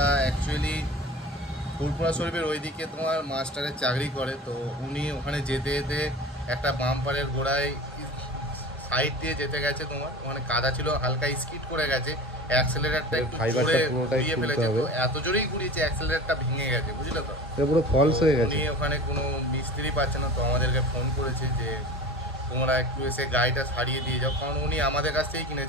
অ্যাকচুয়ালি ফুরপুরা শরীফের ওইদিকে তোমার মাস্টারের চাকরি করে। তো উনি ওখানে যেতে যেতে একটা বাম্পারের গোড়ায় সাইড দিয়ে যেতে গেছে, তোমার ওখানে কাদা ছিল, হালকা স্কিড করে গেছে, অ্যাক্সেলারেটরটা একটু ঘুরিয়ে ফেলেছে। তো এত জোরেই ঘুরিয়েছে অ্যাক্সেলারেটরটা ভেঙে গেছে, বুঝলে তো, পুরো ফলস হয়ে গেছে। উনি ওখানে কোনো মিস্ত্রি পাচ্ছে না, তো আমাদেরকে ফোন করেছে যে তোমরা একটু এসে গাড়িটা সারিয়ে দিয়ে যাও, কারণ উনি আমাদের কাছ থেকেই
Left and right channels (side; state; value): both; normal; correlation 0.36